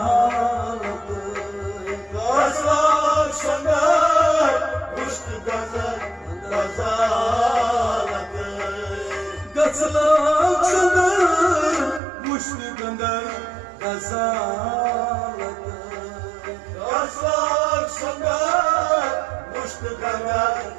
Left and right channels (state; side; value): drops out; left; at 12.0 s